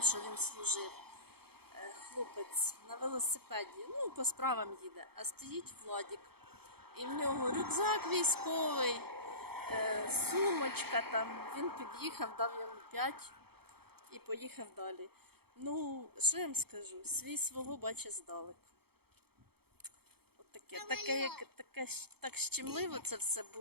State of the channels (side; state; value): left; late; 0.96 ms